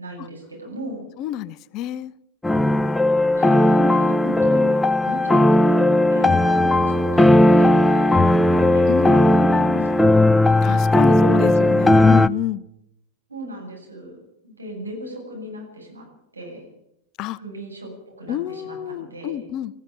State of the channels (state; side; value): normal; both; correlation 0.90